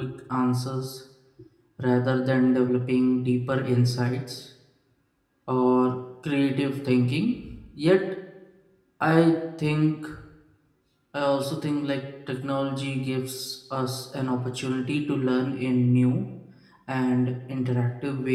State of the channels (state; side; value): identical; both; correlation 1.00